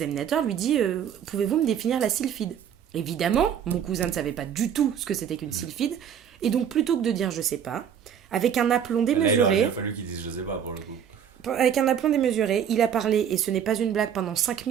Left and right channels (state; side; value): quieter; left; 8.6 dB